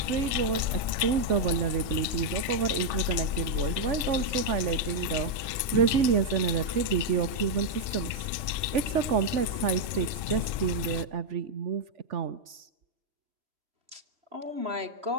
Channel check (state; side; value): late; left; 2.7 ms